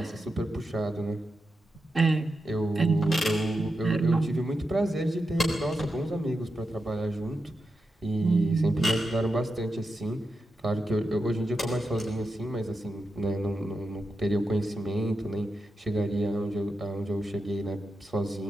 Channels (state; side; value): normal; both; correlation 0.88